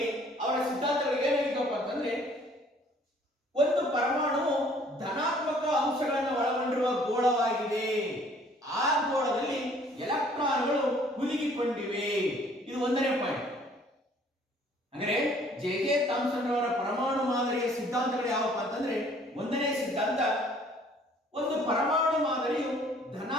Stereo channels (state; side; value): normal; both; correlation 0.58